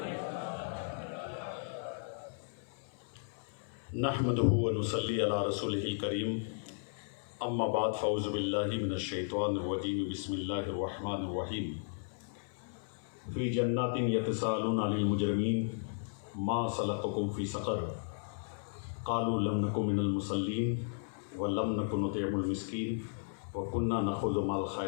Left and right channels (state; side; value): silent; right; 55 dB below the other